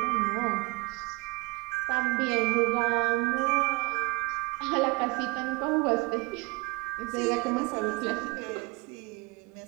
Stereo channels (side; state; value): left; quieter; 26.1 dB